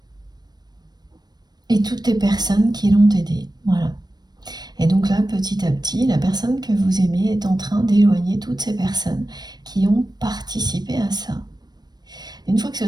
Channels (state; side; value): late; left; 0.19 ms